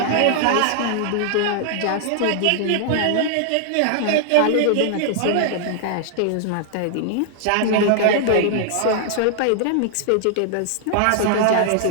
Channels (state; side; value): different; both; correlation -0.01